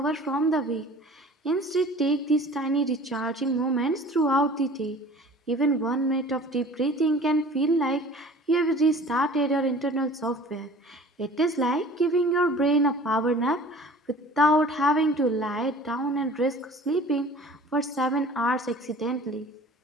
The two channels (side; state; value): both; normal; correlation 0.45